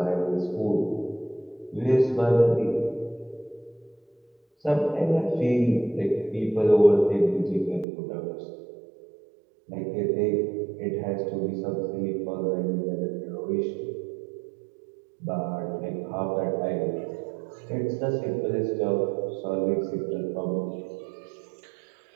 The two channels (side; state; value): left; drops out; at 7.9 s